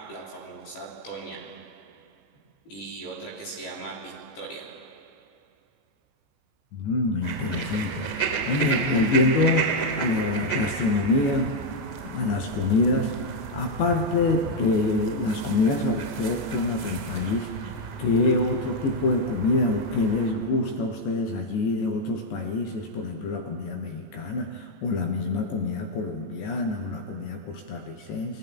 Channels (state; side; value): late; right; 14 ms